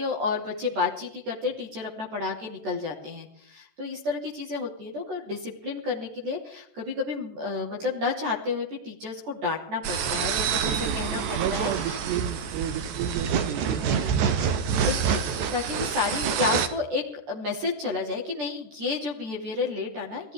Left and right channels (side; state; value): left; late; 14 ms